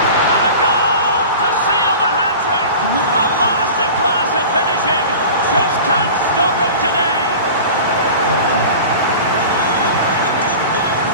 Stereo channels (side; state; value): both; inverted; correlation -0.37